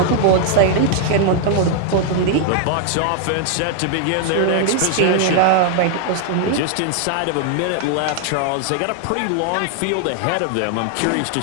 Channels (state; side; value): different; both; correlation 0.00